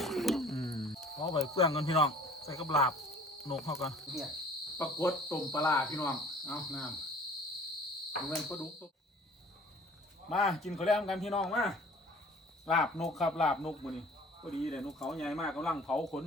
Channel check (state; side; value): normal; both; correlation 0.49